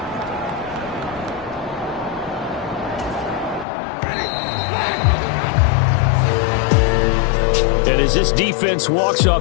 And as this defense walks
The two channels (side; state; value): right; drops out; at 3.7 s